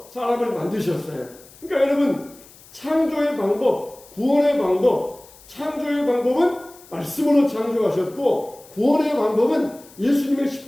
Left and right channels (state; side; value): noise; left; hiss, 23 dB below the sound